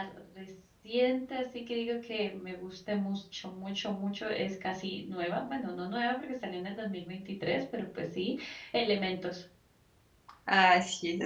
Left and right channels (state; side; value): identical; both; correlation 1.00